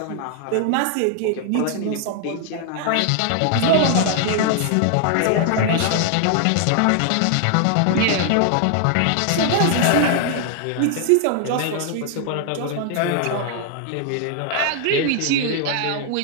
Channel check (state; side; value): different; both; correlation 0.00